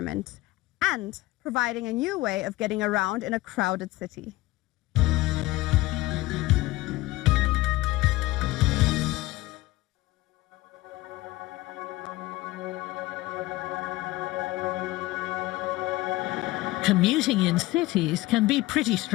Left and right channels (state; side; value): quieter; right; 18.7 dB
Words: and providing a new way of getting around in a crowded city. Commuting in cities can be pretty